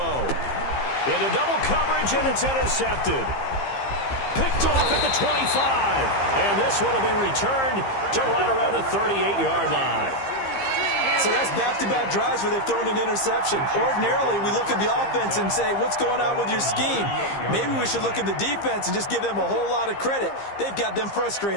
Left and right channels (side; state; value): right; late; 15 ms